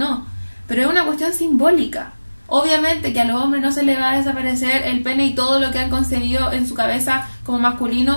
Pero es una cuestión simbólica. Obviamente que a los hombres no se les va a desaparecer el pene y todo lo que han concebido en su cabeza como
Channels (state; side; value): inverted; both; correlation -1.00